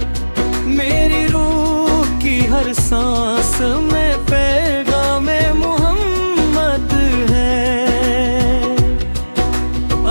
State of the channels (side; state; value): both; inverted; correlation -1.00